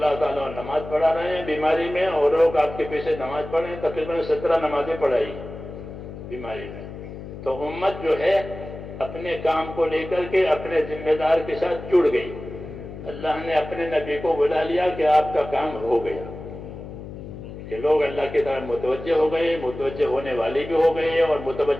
تعالیٰ نماز پڑھا رہے ہیں بیماری میں، اور لوگ آپ کے پیچھے نماز پڑھ رہے ہیں، تقریباً 17 نمازیں پڑھائی بیماری میں۔ تو امت جو ہے اپنے کام کو لے کر کے اپنے ذمہ دار کے ساتھ جڑ گئی، اللہ نے اپنے نبی کو بلا لیا کہ آپ کا کام ہو گیا۔ کہ لوگ اللہ کی طرف متوجہ ہو گئے، متوجہ ہونے والے بھی ہو گئے اور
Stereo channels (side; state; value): left; noise; hum, 12 dB below the sound